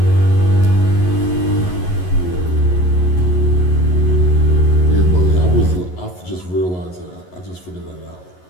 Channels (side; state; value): right; late; 11 ms